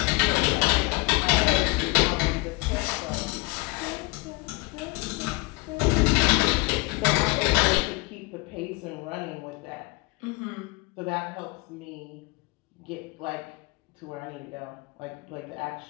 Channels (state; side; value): quieter; right; 25.9 dB